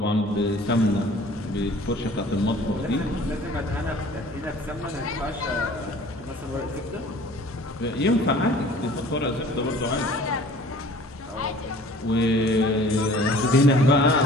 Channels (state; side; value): normal; both; correlation 0.49